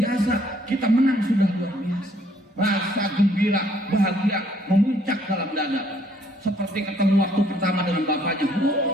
kita menang sudah luar biasa. Rasa gembira, bahagia memuncak dalam dada, seperti ketemu waktu pertama dengan bapaknya.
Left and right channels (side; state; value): both; normal; correlation 0.64